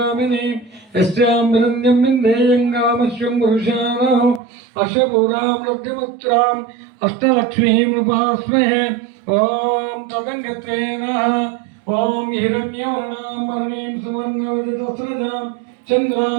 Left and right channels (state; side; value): drops out; left; at 4.4 s